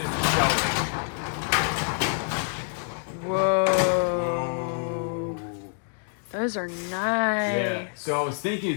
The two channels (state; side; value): silent; right; 61 dB below the other